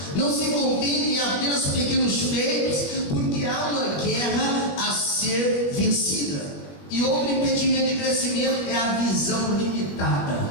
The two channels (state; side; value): late; right; 20 ms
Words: Não se contente em apenas pequenos feitos, porque há uma guerra a ser vencida. E outro impedimento de crescimento é a visão limitada.